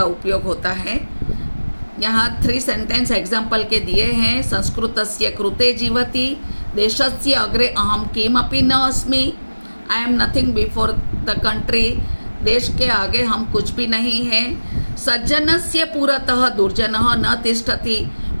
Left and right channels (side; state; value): both; inverted; correlation -1.00